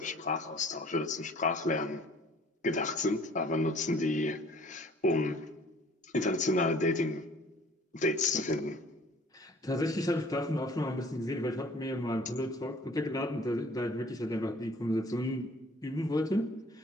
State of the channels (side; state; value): both; normal; correlation 0.53